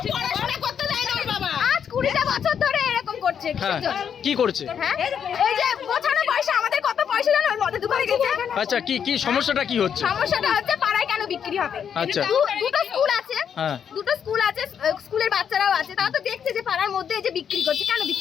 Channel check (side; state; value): right; quieter; 7.9 dB